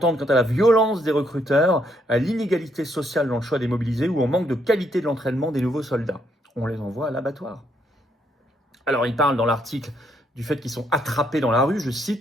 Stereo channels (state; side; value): normal; both; correlation 0.73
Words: quant à la violence des recruteurs, à l'inégalité sociale dans le choix des mobilisés ou au manque de qualité de l'entraînement des nouveaux soldats. On les envoie à l'abattoir. Alors, il parle dans l'article du fait qu'ils sont attrapés dans la rue, je